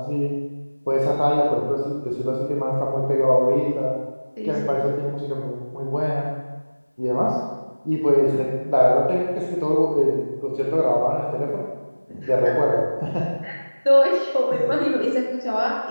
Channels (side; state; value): both; inverted; correlation -1.00